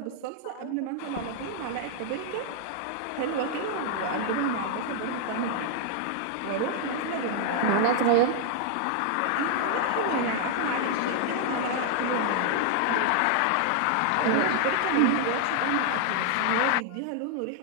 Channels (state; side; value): different; both; correlation -0.01